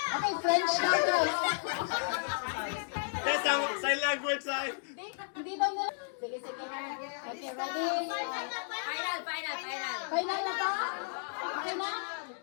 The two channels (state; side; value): silent; right; digital silence